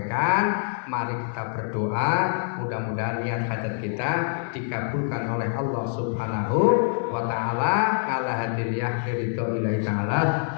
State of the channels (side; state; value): right; silent; 61 dB below the other